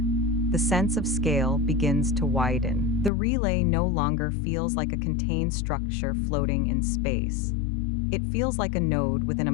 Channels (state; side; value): drops out; right; at 3.1 s